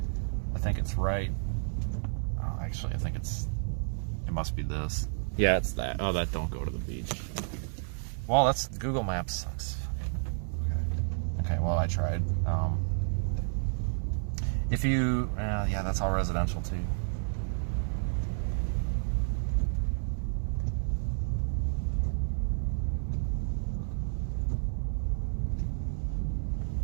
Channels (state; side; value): silent; left; 57 dB below the other